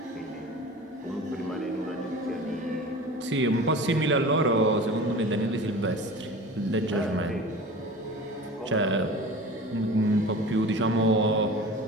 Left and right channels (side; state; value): both; normal; correlation 0.37